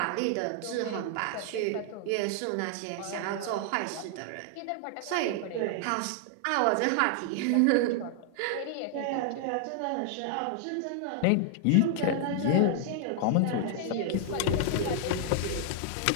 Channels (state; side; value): different; both; correlation 0.00